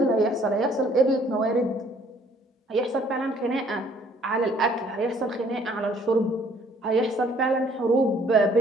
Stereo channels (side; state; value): both; normal; correlation 0.60